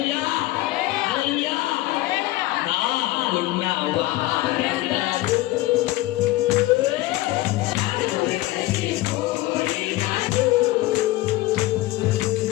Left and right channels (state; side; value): quieter; right; 17.8 dB